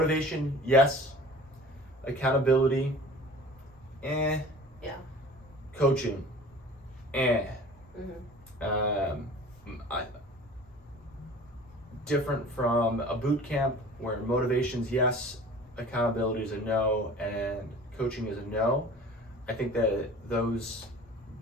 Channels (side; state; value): both; normal; correlation 0.43